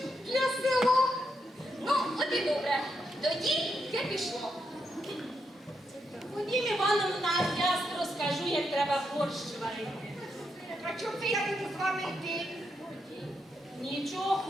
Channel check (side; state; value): both; normal; correlation 0.81